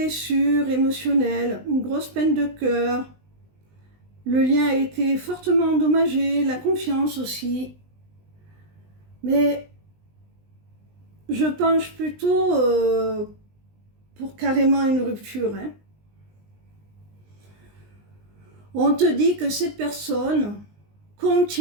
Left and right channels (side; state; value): left; late; 20 ms